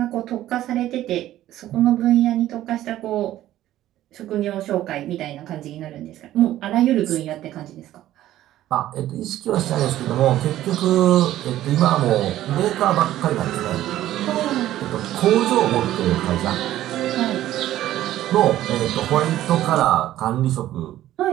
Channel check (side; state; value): left; quieter; 13.6 dB